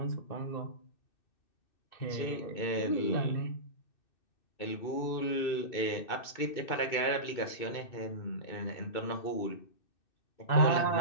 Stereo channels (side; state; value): right; late; 2.6 ms